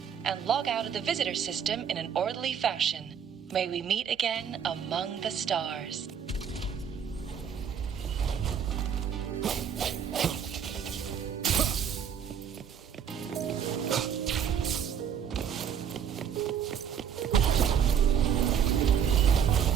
and log out of the visitor system in an orderly fashion. May we meet again among the stars.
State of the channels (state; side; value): quieter; left; 8.1 dB